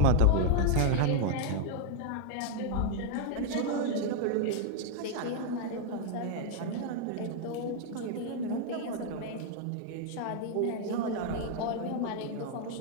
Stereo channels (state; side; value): different; both; correlation 0.00